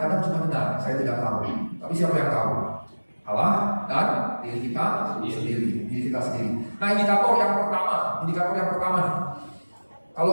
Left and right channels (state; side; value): inverted; both; correlation -1.00